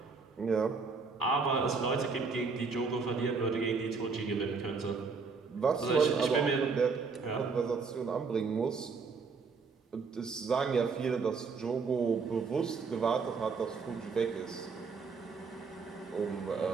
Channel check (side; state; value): left; quieter; 4.9 dB